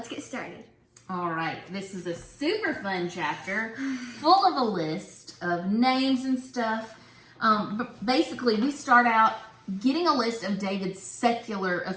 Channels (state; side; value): identical; both; correlation 1.00